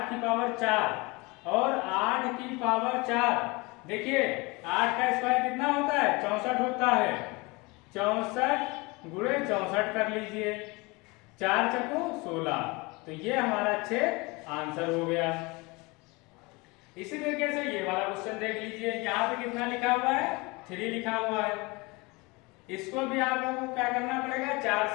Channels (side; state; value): right; quieter; 25.5 dB